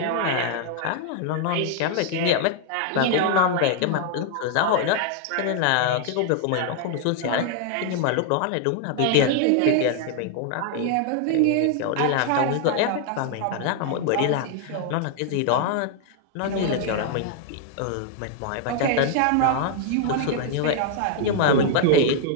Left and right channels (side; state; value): both; different; correlation 0.00